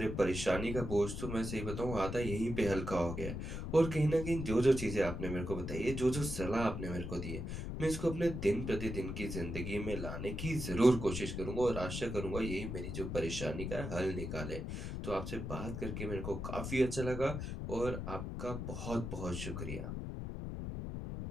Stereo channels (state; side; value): noise; left; rumble, 5 dB below the sound